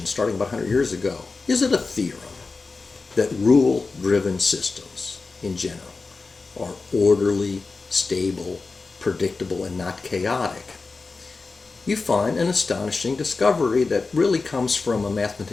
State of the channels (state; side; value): quieter; right; 4.0 dB